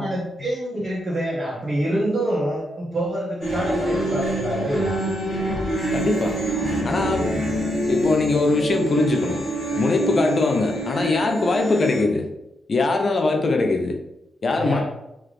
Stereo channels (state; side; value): normal; both; correlation 0.81